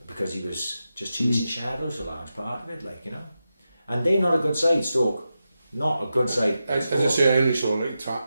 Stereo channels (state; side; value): inverted; both; correlation -0.90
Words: Because he was just chasing shadows, a large part of it, like, you know. And they're not a good side, Stoke. Not a good side. As I say, I only saw